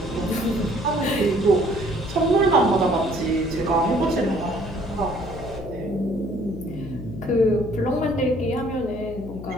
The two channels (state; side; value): noise; left; hum, 12 dB below the sound